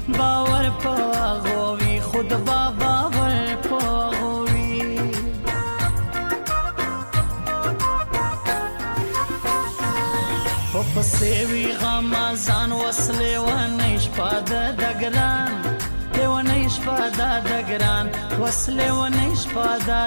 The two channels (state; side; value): inverted; both; correlation -1.00